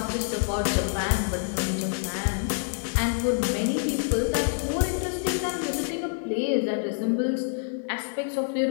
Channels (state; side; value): silent; right; digital silence